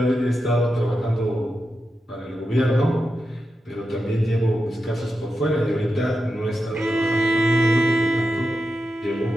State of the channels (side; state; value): both; normal; correlation 0.89